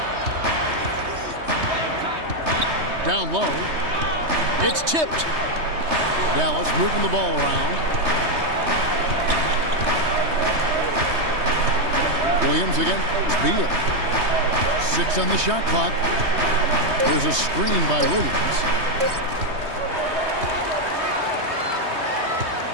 Down low. It's tipped. Dallas moving the ball around. Williams again. Beal. 6 on the shot clock. There's a screen by Williams.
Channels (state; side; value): late; left; 3.2 ms